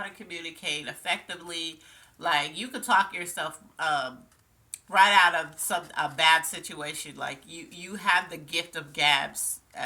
to communicate effectively. Like you could talk yourself right out of a bad situation. Like you have the gift of gabs,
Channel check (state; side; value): identical; both; correlation 1.00